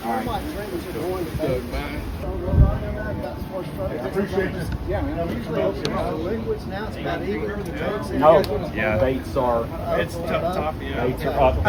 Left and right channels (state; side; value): identical; both; correlation 1.00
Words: All right. Appreciate this. Yeah, man. Usually liquids now, it's about even. No, baits are Tough, yeah. baits are up.